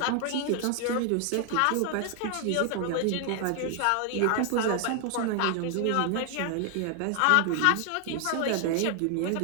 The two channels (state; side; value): different; both; correlation 0.00